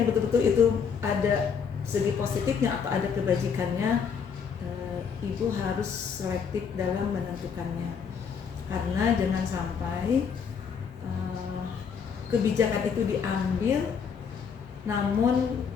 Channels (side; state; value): right; quieter; 6.6 dB